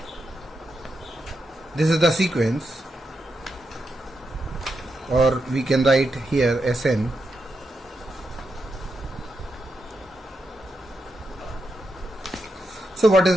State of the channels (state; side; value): normal; both; correlation 0.85